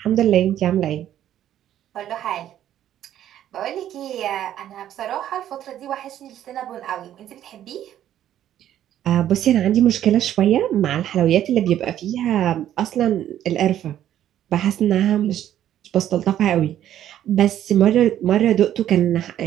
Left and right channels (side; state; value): left; quieter; 11.5 dB